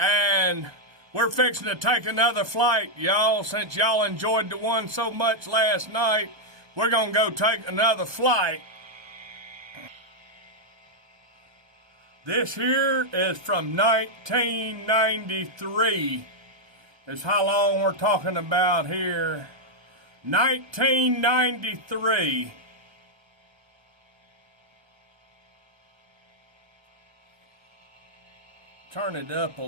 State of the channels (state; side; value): late; left; 1.3 ms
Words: we're fixing to take another flight, y'all. Since y'all enjoyed the one so much last night, we're going to go take another flight. This here is from 1993. Is how long we're talking about here. 1993. Turn it up a